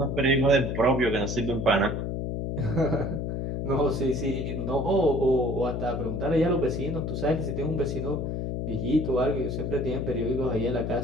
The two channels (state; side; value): noise; left; hum, 2 dB below the sound